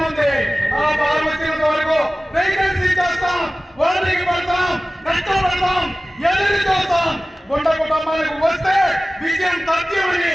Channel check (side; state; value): both; normal; correlation 0.97